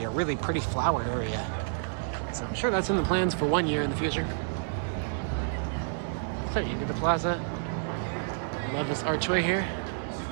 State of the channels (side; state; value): left; silent; digital silence